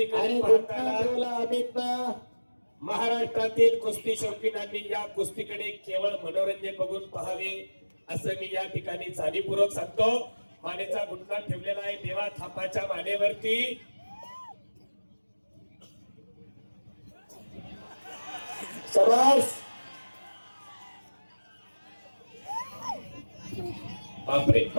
आणि पाहताना अमित महाराष्ट्रातील कुस्ती शौकीनांनी या कुस्तीकडे केवळ मनोरंजन बघून पाहावे असं मी या ठिकाणी जाणीवपूर्वक सांगतो। मानेचा गुटका ठेवलेला आहे देवा थापाच्या मानेवरती। शबास, बापरे,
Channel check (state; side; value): inverted; both; correlation -1.00